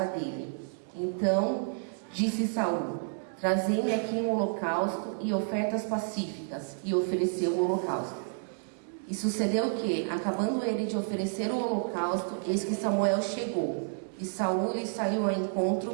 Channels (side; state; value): left; silent; digital silence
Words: dele. Então disse Saul: trazei-me aqui um holocausto e ofertas pacíficas. E ofereceu o holocausto. E sucedeu que, acabando ele de oferecer o holocausto, eis que Samuel chegou, e Saul lhe saiu ao